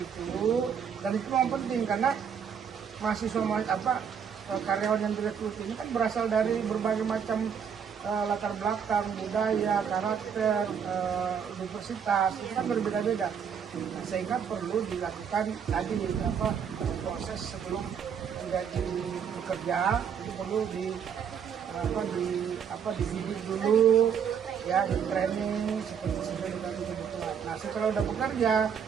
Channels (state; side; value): quieter; left; 7.4 dB